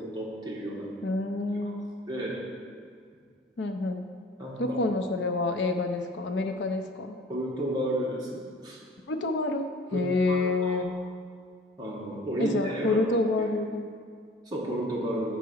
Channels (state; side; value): normal; both; correlation 0.48